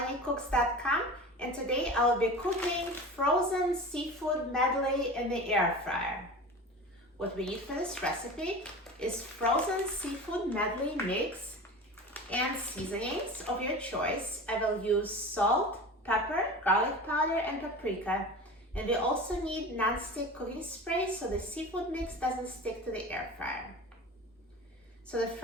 and today I will be cooking frozen seafood medley in the air fryer. What we need for this recipe is frozen seafood medley mix and seasonings of your choice. I will use salt, pepper, garlic powder, and paprika. And we also need non-stick cooking spray so the seafood mix doesn't stick to the air fryer. So the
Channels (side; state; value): both; normal; correlation 0.33